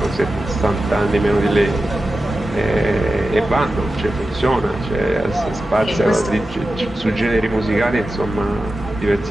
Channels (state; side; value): normal; both; correlation 0.93